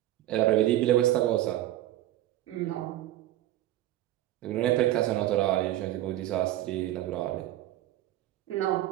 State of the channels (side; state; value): left; quieter; 14.3 dB